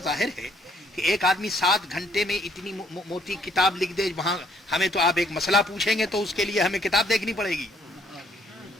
ظاہر ہے کہ ایک آدمی 7 گھنٹے میں اتنی موٹی کتاب لکھ دے، وہاں ہمیں تو آپ ایک مسئلہ پوچھیں گے تو اس کے لیے ہمیں کتاب دیکھنی پڑے گی.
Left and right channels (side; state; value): both; normal; correlation 0.66